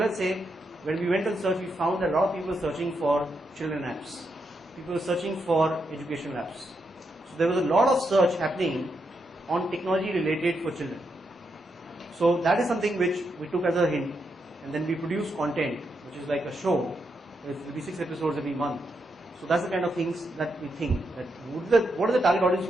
say when we went on search, we found that a lot of people were searching for children apps. People were searching for educational apps. So there was a lot of search happening on technology related for children. So that is something which we took as a hint, and then we produced content, which is like a show. There will be 6 episodes every month. So that's the kind of things that we think, that what is the target audience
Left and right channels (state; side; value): normal; both; correlation 0.82